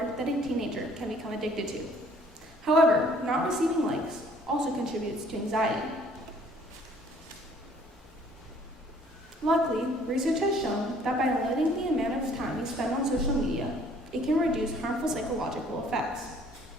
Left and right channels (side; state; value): both; normal; correlation 0.58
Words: that a teenager can become addicted to. However, not receiving likes also contributes to anxiety. Luckily, research has shown that by limiting the amount of time you spend on social media, it can reduce harmful psychological effects.